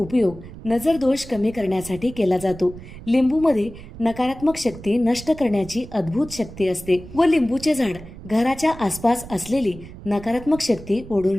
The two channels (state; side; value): noise; right; rumble, 15 dB below the sound